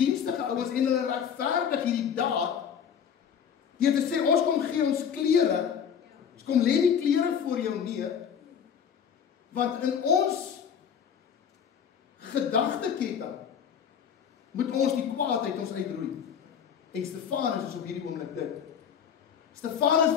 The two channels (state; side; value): quieter; right; 7.8 dB